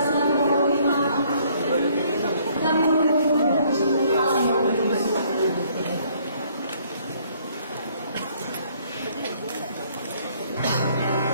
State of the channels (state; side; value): inverted; both; correlation -0.63